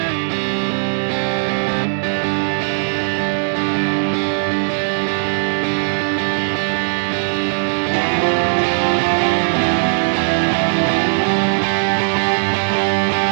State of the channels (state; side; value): silent; left; digital silence